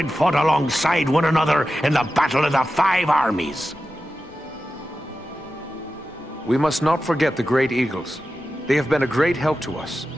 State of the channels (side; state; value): both; normal; correlation 0.92